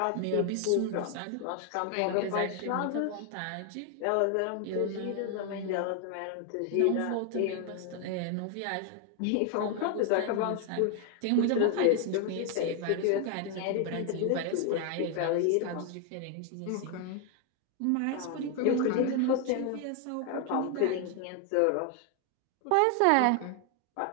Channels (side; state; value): both; different; correlation 0.00